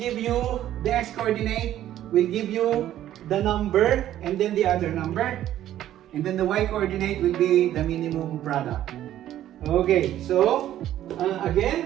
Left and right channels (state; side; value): quieter; left; 12.4 dB